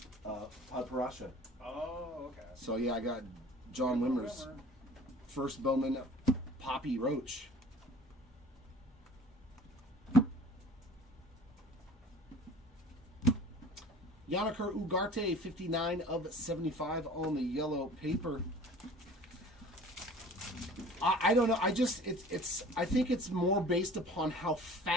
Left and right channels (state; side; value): normal; both; correlation 0.46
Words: Parasha. Oh, okay. So yeah, I got John Wimmer's first Bowman Poppy Roach. Yanniker Ugarte, 59 of 75 on the yellow paper. I don't know. I think it's more based upon how